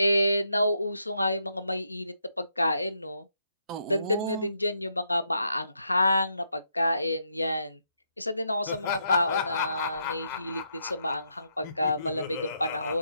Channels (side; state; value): both; inverted; correlation -0.79